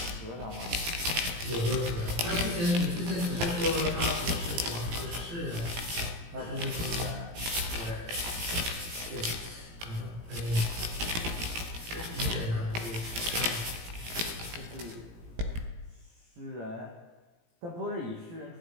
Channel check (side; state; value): left; late; 18 ms